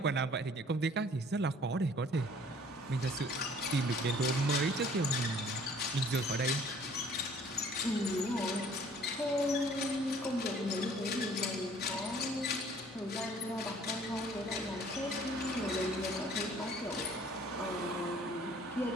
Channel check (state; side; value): normal; both; correlation 0.55